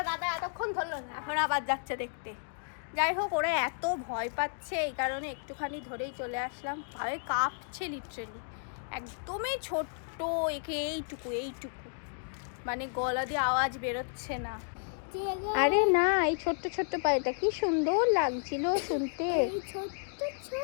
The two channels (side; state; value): right; silent; digital silence